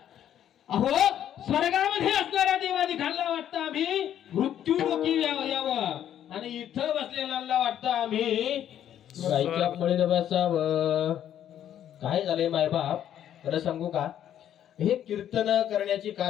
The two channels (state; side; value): quieter; right; 10.5 dB